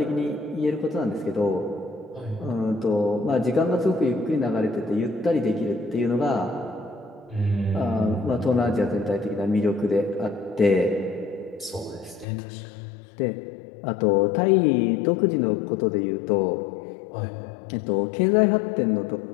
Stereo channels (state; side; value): drops out; right; at 12.2 s